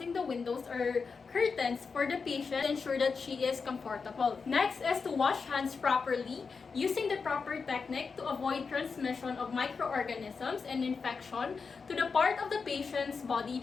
the windows or curtains for the patient to ensure that she is comfortable. Next is to wash hands properly using the proper technique to avoid transmission of microorganisms and infection to the part of the patient's body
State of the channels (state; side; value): quieter; right; 5.1 dB